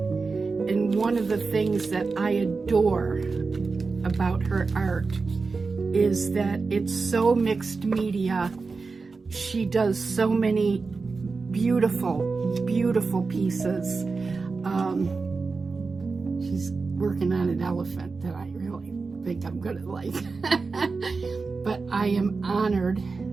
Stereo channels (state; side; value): quieter; left; 4.3 dB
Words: one of the things that I adore about her art is that it's so mixed media. She does so many beautiful, beautiful pieces. She's working on an elephant that I really think I'm gonna like. But I am honored